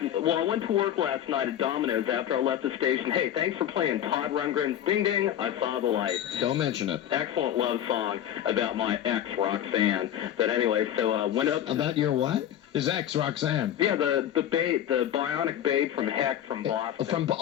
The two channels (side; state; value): right; quieter; 10.9 dB